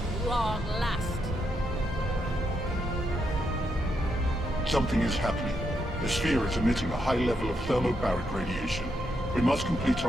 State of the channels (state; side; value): normal; both; correlation 0.80